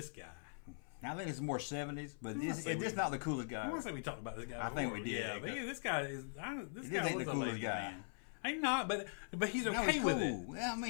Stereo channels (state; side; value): silent; right; 50 dB below the other